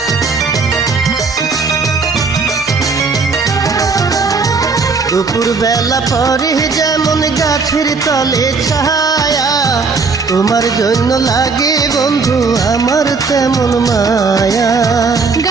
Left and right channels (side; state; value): left; quieter; 4.6 dB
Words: দুপুর বেলা পরে যেমন গাছের তলে ছায়া, তোমার জন্য লাগে বন্ধু আমার তেমন মায়া।